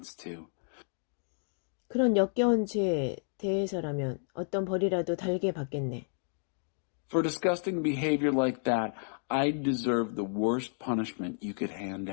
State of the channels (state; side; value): silent; right; 57 dB below the other